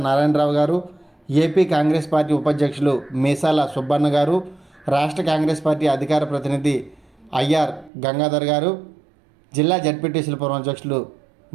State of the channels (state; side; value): drops out; left; at 7.9 s